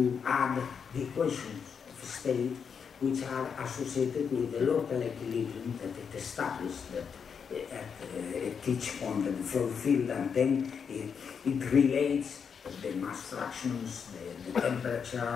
add the equations of state, which are associated with the local equilibrium that it established at each point in the flow field, and then it relates the mass fractions, the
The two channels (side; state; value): right; quieter; 6.6 dB